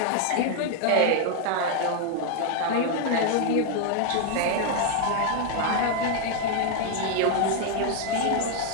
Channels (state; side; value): different; both; correlation 0.01